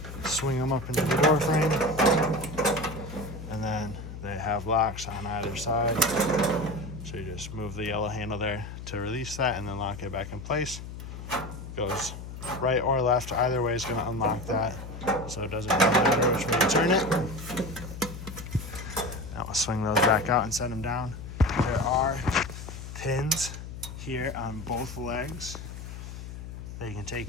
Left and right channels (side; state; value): left; noise; hum, 10 dB below the sound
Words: swing them up into the door frame, and then they have locks on either side. So you just move the yellow handle there to release that and then lock it back in place. Goes right or left, either way is going to unlock that. So it doesn't really matter which way you turn it. Now we'll swing those back out and set them down. There are pins here on both legs that you can